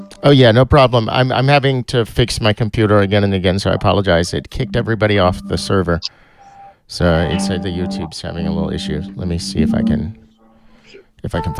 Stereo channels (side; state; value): both; identical; correlation 1.00